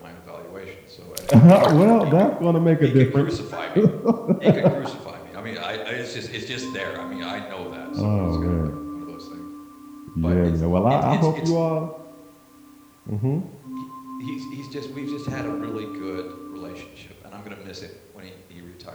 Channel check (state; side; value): identical; both; correlation 1.00